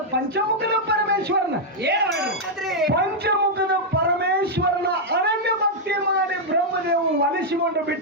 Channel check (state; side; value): normal; both; correlation -0.03